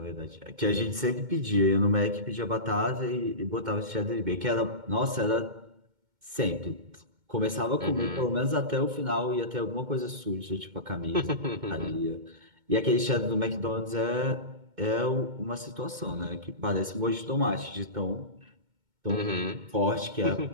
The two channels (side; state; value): left; late; 2.2 ms